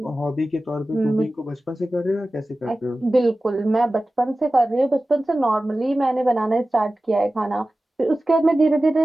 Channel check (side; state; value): both; normal; correlation 0.96